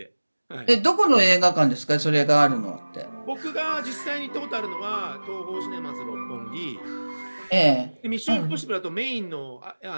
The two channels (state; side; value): inverted; both; correlation -1.00